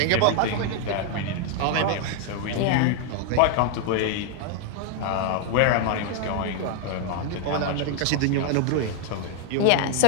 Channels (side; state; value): both; different; correlation 0.00